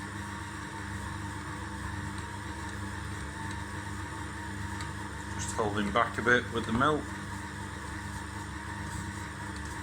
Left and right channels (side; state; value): both; identical; correlation 1.00